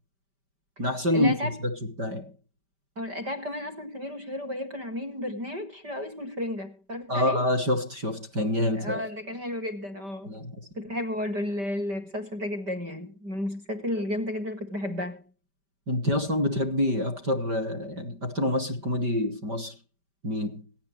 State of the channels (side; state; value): left; late; 5.1 ms